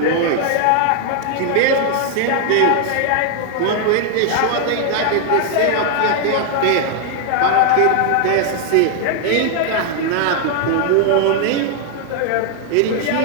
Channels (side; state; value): both; different; correlation 0.00